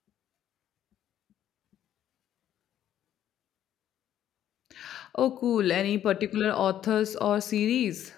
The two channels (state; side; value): quieter; right; 11.2 dB